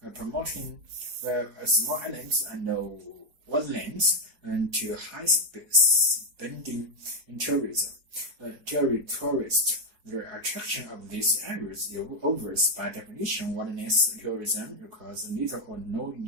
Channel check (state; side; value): late; left; 4.7 ms